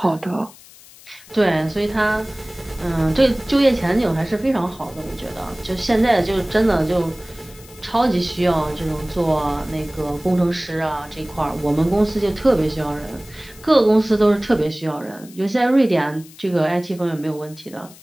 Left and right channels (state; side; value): noise; left; hiss, 22 dB below the sound